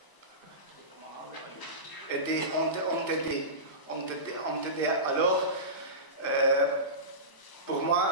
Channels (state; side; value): late; right; 1.0 ms